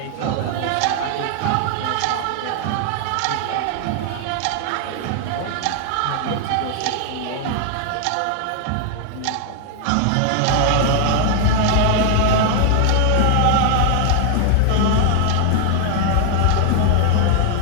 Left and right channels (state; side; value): different; both; correlation 0.00